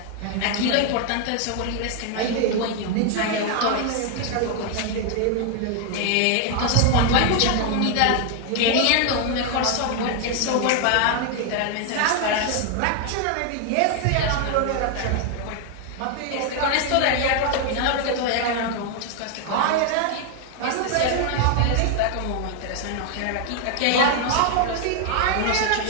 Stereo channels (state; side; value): different; both; correlation 0.00